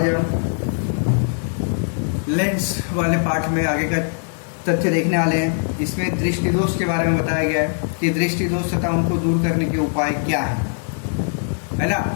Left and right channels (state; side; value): silent; right; 57 dB below the other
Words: हम लेंस वाले पाठ में आगे का तथ्य देखने वाले हैं। इसमें दृष्टि दोष के बारे में बताया गया है कि दृष्टि दोष तथा उनको दूर करने के उपाय क्या है ना।